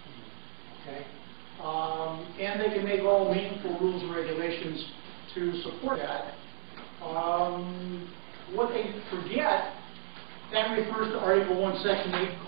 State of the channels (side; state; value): left; silent; digital silence